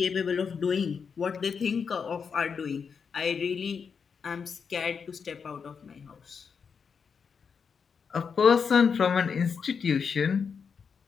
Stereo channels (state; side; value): quieter; right; 6.1 dB